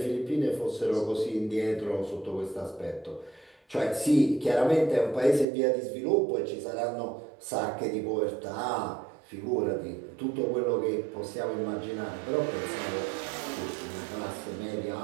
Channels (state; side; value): drops out; left; at 5.5 s